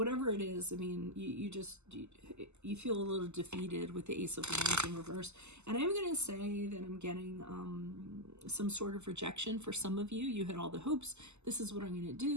it is, I mean, you feel a little defeated with the Ace of Wands in reverse. And I'm going to say that I'm getting some sort of rejection for some of you. You had all the hopes. This is what I'm going to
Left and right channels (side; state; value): left; late; 0.82 ms